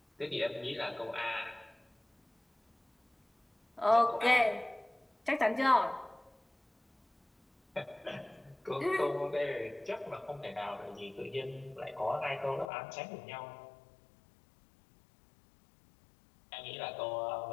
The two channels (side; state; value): right; drops out; at 12.7 s